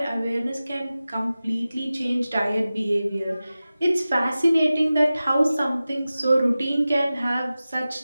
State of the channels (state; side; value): inverted; both; correlation -0.96